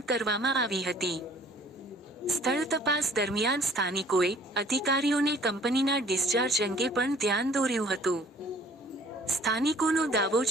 કરવામાં આવી હતી. સ્થળ તપાસ દરમિયાન સ્થાનિકોએ અધિકારીઓને કંપનીના ડિસ્ચાર્જ અંગે પણ ધ્યાન દોર્યું હતું. સ્થાનિકોનો દાવો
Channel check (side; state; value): both; normal; correlation 0.55